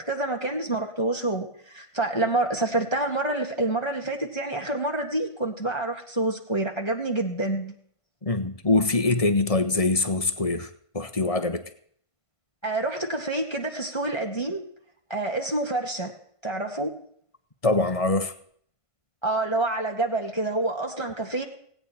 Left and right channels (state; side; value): late; right; 1.7 ms